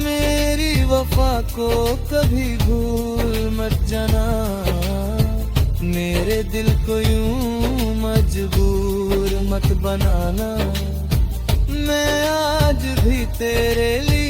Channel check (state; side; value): identical; both; correlation 1.00